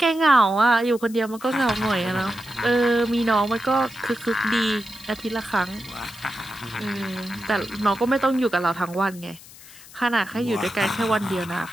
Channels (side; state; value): left; noise; hiss, 20 dB below the sound